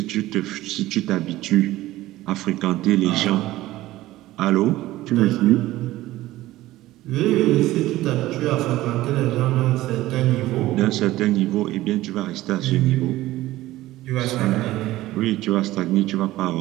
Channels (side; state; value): left; quieter; 16.4 dB